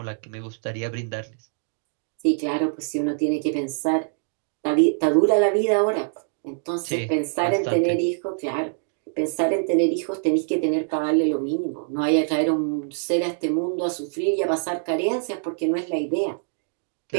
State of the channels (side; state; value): left; silent; digital silence